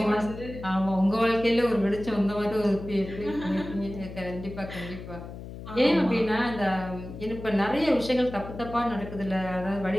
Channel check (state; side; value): noise; left; hum, 12 dB below the sound